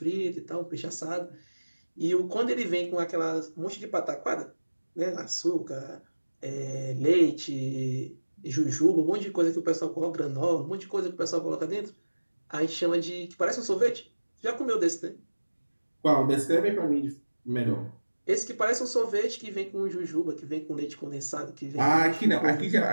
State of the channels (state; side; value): inverted; both; correlation -1.00